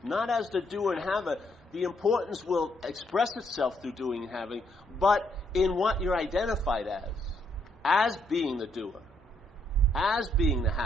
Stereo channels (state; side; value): normal; both; correlation 0.73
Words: Not as the doer and haver. The importance will express itself through doing and having, but in what you're identified as being the doer, as being the